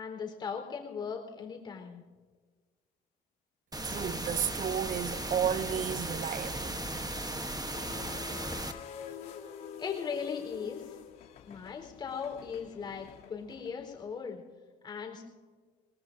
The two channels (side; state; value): both; normal; correlation 0.32